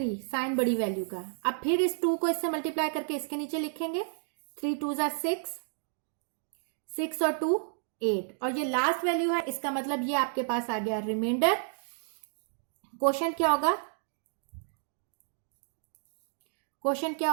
साइन बड़ी वैल्यू का। अब फिर इस 2 को इससे मल्टीप्लाई करके इसके नीचे लिखेंगे, 3 2 ज़ा 6, 6 और 2 8, और ये लास्ट वैल्यू है, इसका मतलब ये आपके पास आ गया रिमाइंडर। क्वोशंट क्या होगा, क्वोशंट क्या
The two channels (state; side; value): silent; left; digital silence